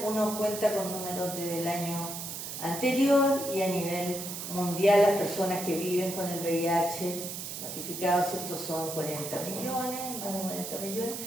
uno cuenta con números desde el año anterior, y a nivel mundial las personas que viven con el VIH notificados, ¿cierto? Son 40 millones, más de 40 millones.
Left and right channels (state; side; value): noise; right; hiss, 7 dB below the sound